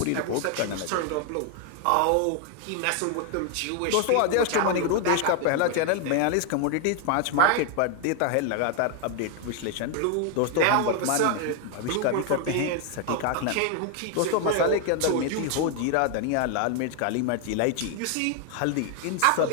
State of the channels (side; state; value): both; different; correlation 0.01